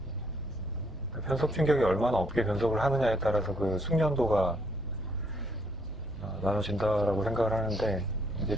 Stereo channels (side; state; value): both; normal; correlation 0.68